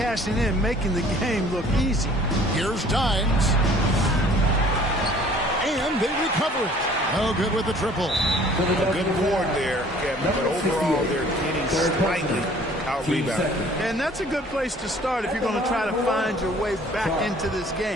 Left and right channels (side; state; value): both; normal; correlation 0.53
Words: in, making the game look easy. Here's Dines. And they recover it. Oh, good with the triple. A good board there, Kevin, but overall they're getting slightly out-rebounded. And that's a good place to start if you're going to try to find your way back into this